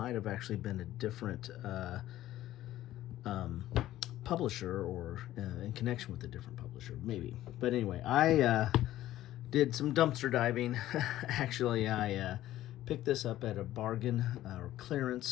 have actually been a different publisher or in connection with a different publisher, maybe. But anyway, I did some dumpster diving. Actually, I picked this up at a bargain or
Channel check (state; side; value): quieter; right; 14.1 dB